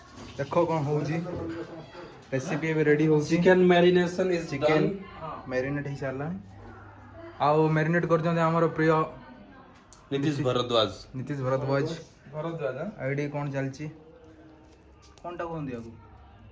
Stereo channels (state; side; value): identical; both; correlation 1.00